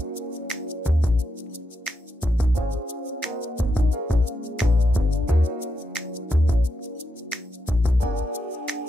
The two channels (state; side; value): normal; both; correlation 0.83